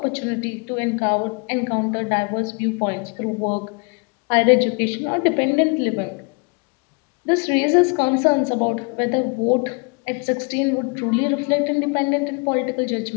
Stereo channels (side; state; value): right; quieter; 33.3 dB